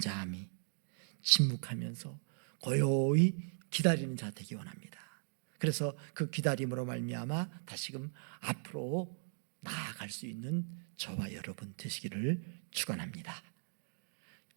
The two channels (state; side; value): silent; left; digital silence